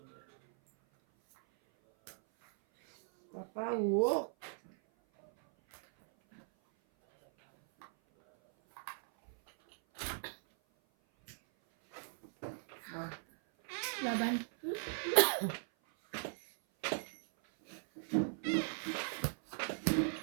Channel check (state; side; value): silent; left; 53 dB below the other